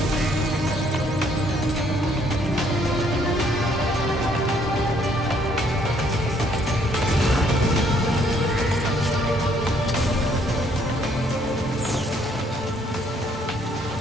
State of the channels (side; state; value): both; normal; correlation 0.66